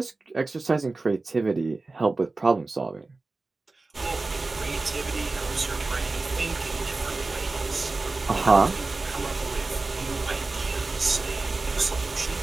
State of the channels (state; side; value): quieter; left; 3.5 dB